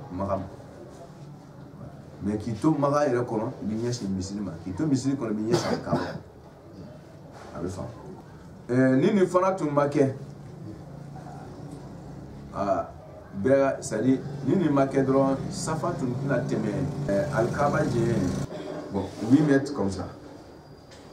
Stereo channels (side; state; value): both; identical; correlation 1.00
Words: maka mais qui tombe maga ere kono bi nyasi misilima qui tombe misili kono bi nyasi kawo abe fa nini fana tun make bega sali nini make dron safa tun na teme alkaba je bon 8 mètres comme ça